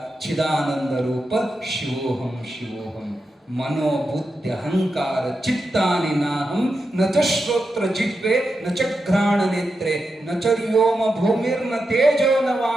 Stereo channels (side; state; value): both; normal; correlation 0.88